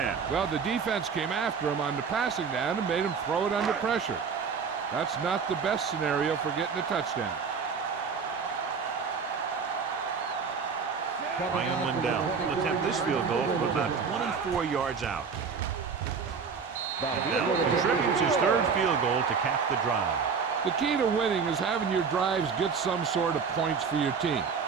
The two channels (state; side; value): quieter; left; 5.8 dB